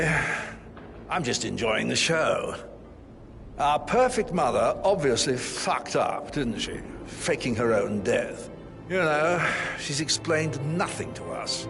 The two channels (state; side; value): identical; both; correlation 1.00